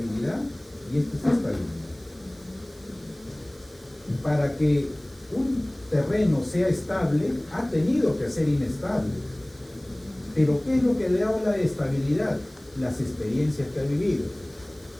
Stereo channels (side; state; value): right; noise; hiss, 27 dB below the sound